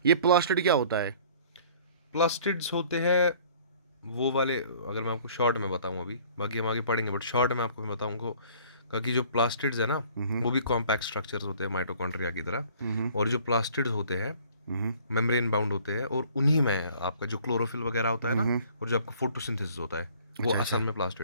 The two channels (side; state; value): both; inverted; correlation -0.53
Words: ये प्लास्टिड क्या होता है? प्लास्टिड्स होते हैं वो वाले, अगर मैं आपको शॉर्ट में बताऊं, अभी बाकी हम आगे पढ़ेंगे, बट शॉर्ट में आपको मैं बताऊंगा कि जो प्लास्टिड्स है ना, वो भी कॉम्पैक्ट स्ट्रक्चर्स होते हैं माइटोकॉन्ड्रिया की तरह. और जो प्लास्टिड्स होते हैं मेम्ब्रेन बाउंड होते हैं, और उन्हीं में आपका जो क्लोरोफिल वगैरह होता है ना, और जो आपका फोटोसिंथेसिस होता है, वो असल में